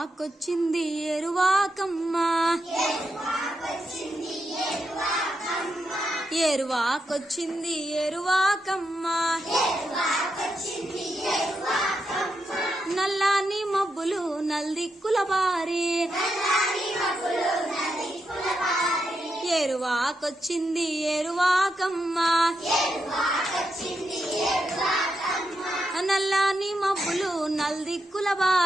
ఏరువాకమ్మ, ఏరువాకొచ్చింది ఏరువాకమ్మ, నల్లాని మబ్బులు నల్దిక్కుల బారి, ఏరువాకొచ్చింది ఏరువాకమ్మ, నల్లాని మబ్బులు నల్దిక్కుల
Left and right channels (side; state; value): both; normal; correlation 0.84